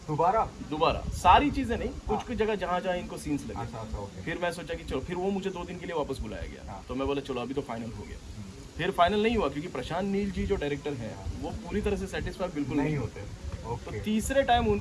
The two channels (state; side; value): identical; both; correlation 1.00